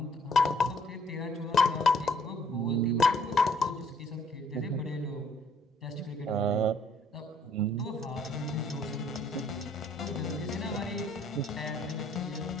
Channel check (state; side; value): normal; both; correlation 0.63